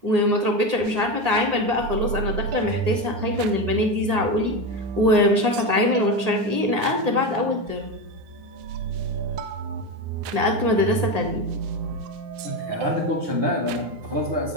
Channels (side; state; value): left; late; 9.7 ms